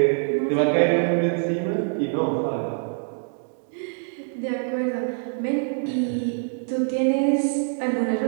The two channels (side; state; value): left; silent; 62 dB below the other